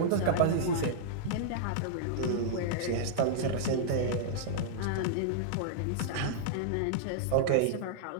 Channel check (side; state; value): both; different; correlation -0.02